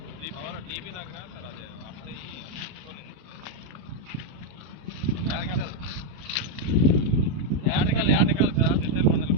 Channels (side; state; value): left; late; 33 ms